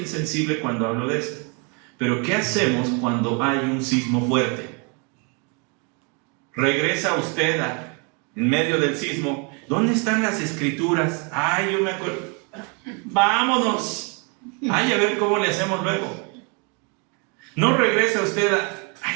cuando hablo de esto. Pero ¿qué hacemos cuando hay un sismo fuerte? Regresa usted en medio del sismo. ¿Dónde están las escrituras? Ay, yo me acuerdo. Vámonos. Ay, a ver cómo le hacemos luego. No regresa usted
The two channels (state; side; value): quieter; left; 34.0 dB